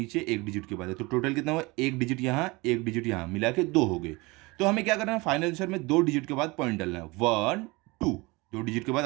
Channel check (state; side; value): quieter; left; 24.1 dB